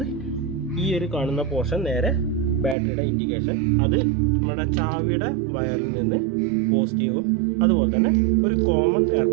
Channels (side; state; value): left; drops out; at 2.8 s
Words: ഈ ഒരു കാണുന്ന പോർഷൻ നേരെ ബാറ്ററിയുടെ ഇൻഡിക്കേഷൻ, അത് നമ്മുടെ ചാവിയുടെ വയറിൽ നിന്ന് പോസിറ്റീവും അതുപോലെ തന്നെ ഒരു കോമൺ